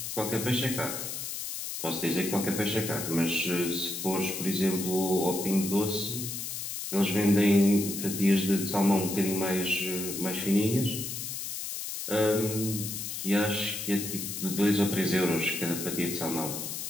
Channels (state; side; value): noise; left; hiss, 5 dB below the sound